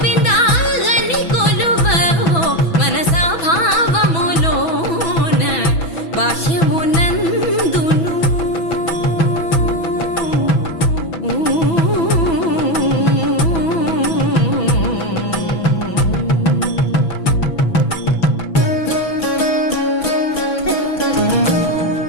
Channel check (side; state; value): right; late; 6.1 ms